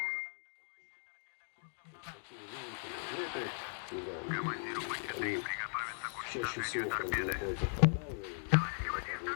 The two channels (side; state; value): right; silent; digital silence